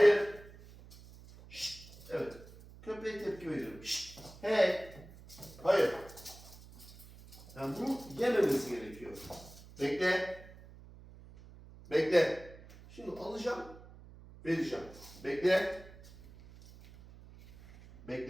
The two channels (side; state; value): right; noise; hum, 19 dB below the sound